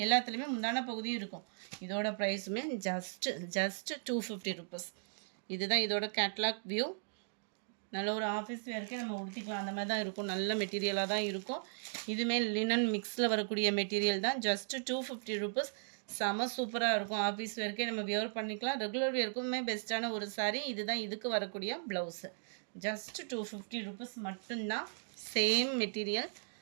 எல்லாத்துலேயுமே முந்தான பகுதியும் இருக்கும். இதோட ப்ரைஸுமே ஜஸ்ட் 250 ருபீஸ். இதுதான் இதோட கேட்லாக் வியூ. நல்ல ஒரு ஆஃபீஸ் வேர்க்கே நம்ம உடுத்திக்கலாம் அந்த மாதிரி தான் இருக்கும். நல்ல மெட்டீரியலாக தான் இருக்கும். இதுவுமே லினன் மிக்ஸில் வரக்கூடிய மெட்டீரியல் தான். Just 250 rupees. செம சூப்பராக இருக்கும். ஆஃபீஸ் வேர்க்கே நம்ம வியர் பண்ணிக்கலாம். ரெகுலர் வேர்க்குமே பெஸ்ட்டான ஒரு சாரீ. இதுதான் இதுக்கு வரக்கூடிய ப்ளவுஸு. ஜஸ்ட் 250 ருபீஸ் மட்டும்தான். Same material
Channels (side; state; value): left; silent; digital silence